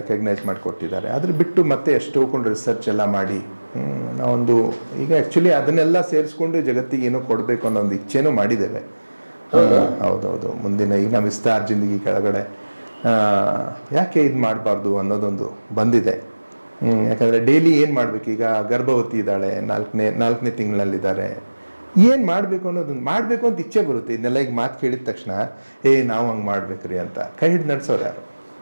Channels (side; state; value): both; inverted; correlation -1.00